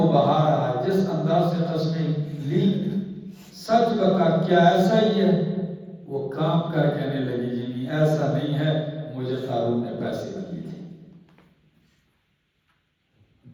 بہا رہا ہے، جس انداز سے قسمیں لی، سچ بتا کیا ایسا ہی ہے؟ وہ کام کر کہنے لگی جی نہیں ایسا نہیں ہے، مجھے قارون نے پیسے دیے تھے۔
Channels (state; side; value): identical; both; correlation 1.00